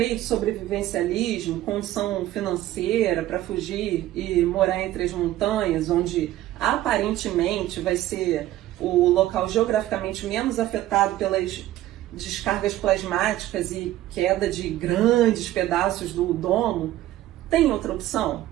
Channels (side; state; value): left; quieter; 14.4 dB